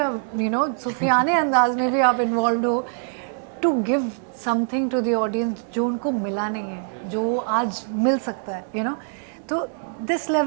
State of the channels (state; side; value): silent; left; 63 dB below the other